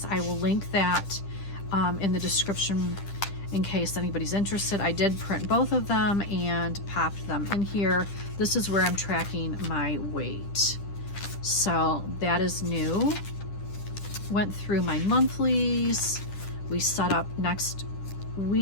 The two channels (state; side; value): late; right; 10 ms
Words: I will link that in the description in case anybody's interested. I did print both of them and popped them in here. This is where I'm tracking my weight. So that is new. Went through my monthlies. We set up next